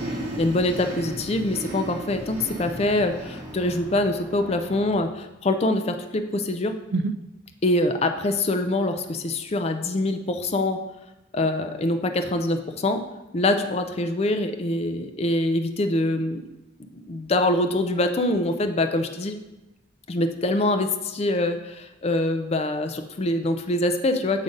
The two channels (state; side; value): normal; both; correlation 0.43